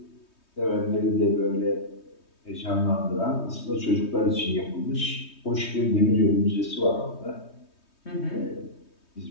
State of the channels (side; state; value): right; late; 3.2 ms